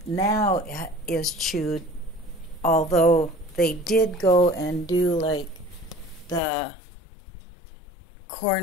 is chewed, although they did go and do like the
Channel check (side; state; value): right; drops out; at 6.4 s